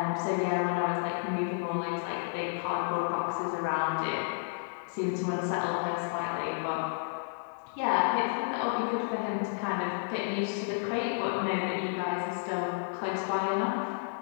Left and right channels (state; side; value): silent; right; digital silence